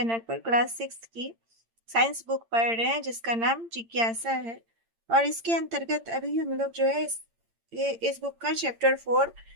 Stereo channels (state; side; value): late; left; 8.8 ms